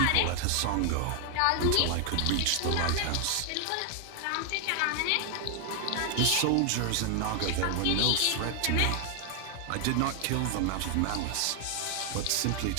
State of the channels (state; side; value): different; both; correlation 0.00